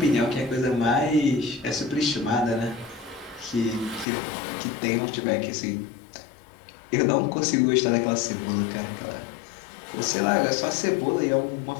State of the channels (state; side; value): drops out; right; at 4.0 s